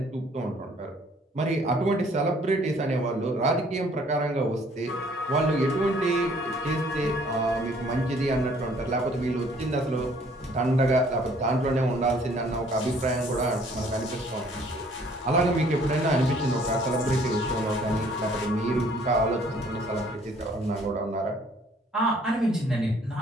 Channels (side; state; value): both; normal; correlation 0.59